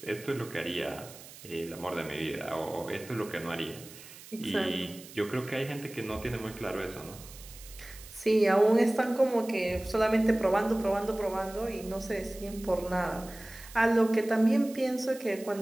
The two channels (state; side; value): noise; right; hiss, 17 dB below the sound